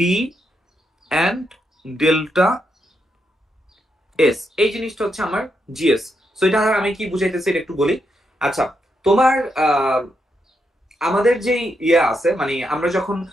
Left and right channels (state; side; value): normal; both; correlation 0.82